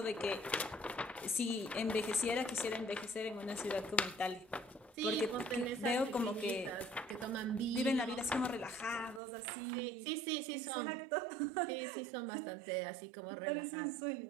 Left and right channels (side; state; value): left; drops out; at 9.2 s